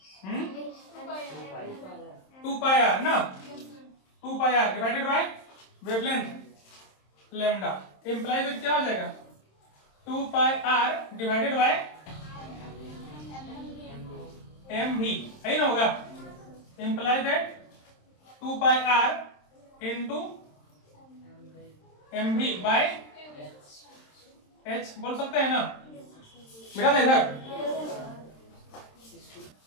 2 पाई आर ना, 2 pi R divided by wavelength lambda, imply that क्या हो जाएगा 2 pi R divided by M V, है ना, होगा, imply that 2 pi R into M V by H, बोल सकते हैं ना, बेटा था इधर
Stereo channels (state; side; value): late; right; 27 ms